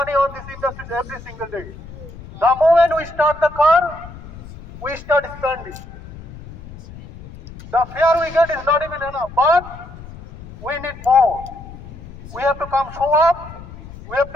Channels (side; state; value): left; noise; rumble, 16 dB below the sound